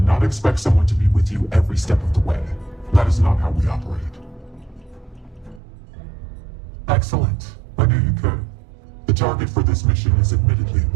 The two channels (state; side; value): drops out; left; at 5.6 s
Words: expect someone to be with you every step of the way. That is not how we operate. Excellent. I knew you could. The target for this mission is admittedly